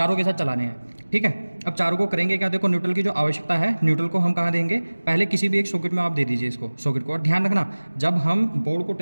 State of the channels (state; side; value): inverted; both; correlation -1.00